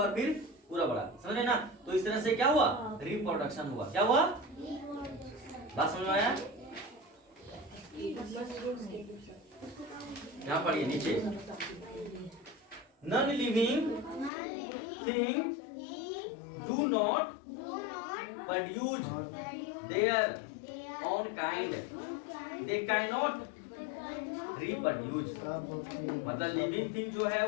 फिर पूरा बड़ा, समझे ना। तो इस तरह से क्या हुआ? रिप्रोडक्शन हुआ। क्या हुआ? बात समझ में आया? यहाँ पढ़िए नीचे, non living thing do not produce their own kind, they can not reproduce. मतलब लिविंग थिंग जो है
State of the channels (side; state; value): right; drops out; at 14.3 s